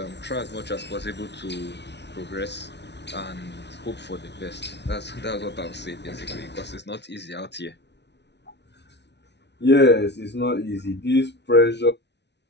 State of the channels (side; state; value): right; late; 0.50 ms